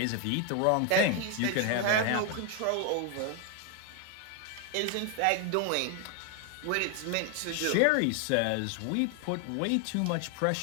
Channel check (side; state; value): both; different; correlation 0.01